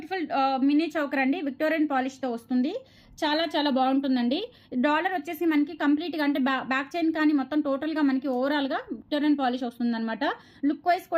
మినీ చౌకర్ అండి. విక్టోరియన్ పాలిష్తో వస్తుంది. చాలా చాలా బాగుంటుందండి. డాలర్ వచ్చేసి మనకి కంప్లీట్గా అంటే బ్యాక్ చైన్ కానీ మొత్తం టోటల్గా మనకి ఓవరాల్గా విక్టోరియన్ పాలిష్ వస్తుందన్నమాట. లుక్ వైజ్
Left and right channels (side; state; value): both; identical; correlation 1.00